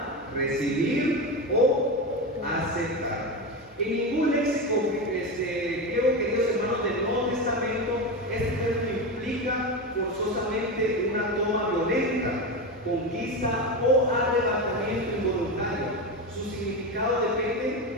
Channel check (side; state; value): both; normal; correlation 0.18